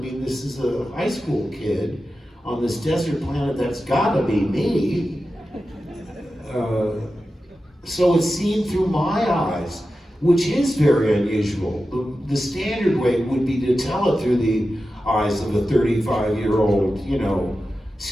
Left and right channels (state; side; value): normal; both; correlation 0.92